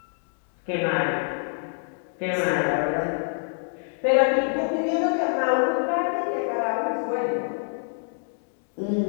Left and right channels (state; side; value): silent; right; 61 dB below the other